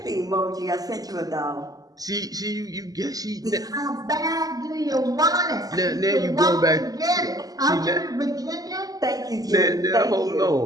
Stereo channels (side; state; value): left; late; 0.18 ms